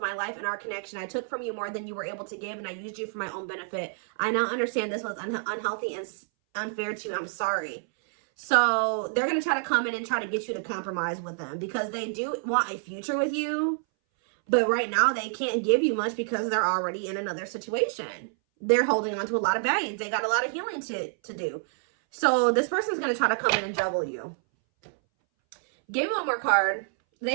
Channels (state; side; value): silent; left; 59 dB below the other